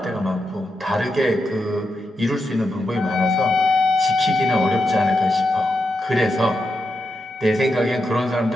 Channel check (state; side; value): normal; both; correlation 0.86